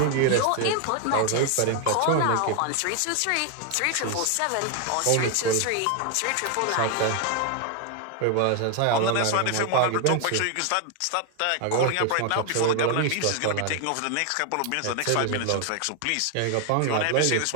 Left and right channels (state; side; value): different; both; correlation 0.01